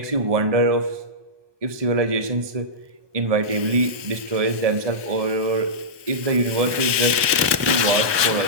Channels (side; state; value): left; late; 1.2 ms